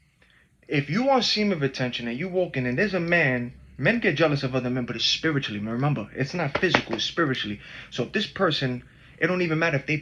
If you want semen retention and you walking and there's a man, men get jealous of other men, but it's spiritually. Remember, it's not physical, it's spiritually. So if this person, it don't even matter if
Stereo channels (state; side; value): identical; both; correlation 1.00